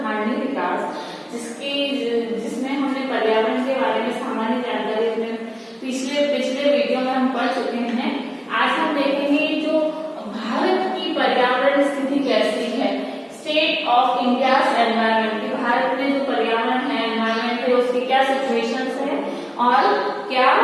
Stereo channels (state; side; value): identical; both; correlation 1.00